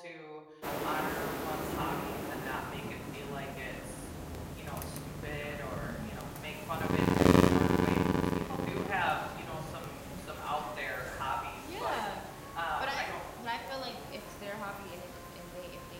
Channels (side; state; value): both; identical; correlation 1.00